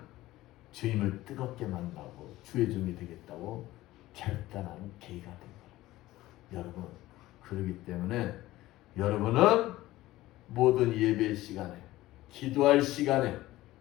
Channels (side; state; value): right; quieter; 16.7 dB